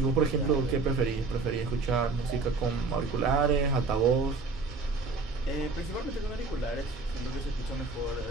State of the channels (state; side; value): quieter; left; 4.0 dB